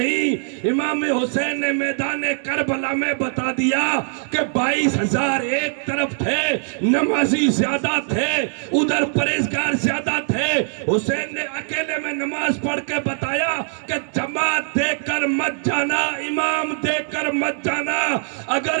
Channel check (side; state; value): left; silent; digital silence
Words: امام حسین نے میدان کربلا میں بتا دیا کہ 22,000 ایک طرف تھے، نمازی زیادہ تھے، ادھر پرہیزگار زیادہ تھے۔ حسین نے اکیلے میں نماز پڑھ کے بتایا کہ جماعت دیکھ کر مت جانا، امام دیکھ کر مت جانا۔